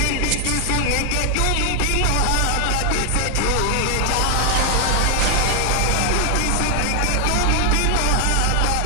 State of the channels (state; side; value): different; both; correlation 0.00